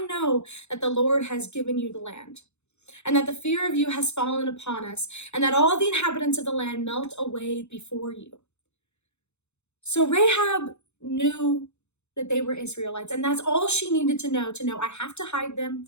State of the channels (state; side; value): late; right; 0.82 ms